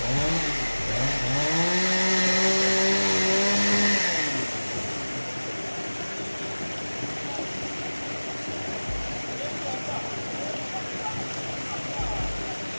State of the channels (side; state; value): both; inverted; correlation -1.00